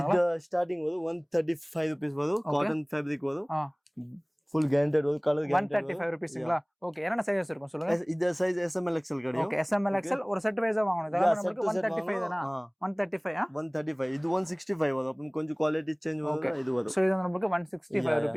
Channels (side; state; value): both; identical; correlation 1.00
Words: இது ஸ்டார்டிங் வந்து 135 rupees வரும். காட்டன் ஃபேப்ரிக் வரும். full guaranteed ஒரு கலர் guaranteed 135 rupeesங்களா? ஓகே என்னென்ன சைஸ் இருக்கும் சொல்லுங்க. இந்த சைஸ் SML XL கிடைக்கும். ஓகே SML XL ஒரு செட் வைஸா வாங்கணும். இதெல்லாம் நமக்கு 135 தானா? 135 இது 165 வரும். அப்ப கொஞ்சம் குவாலிட்டி சேஞ்ச் வரும். இது வரும். சோ இது நமக்கு 165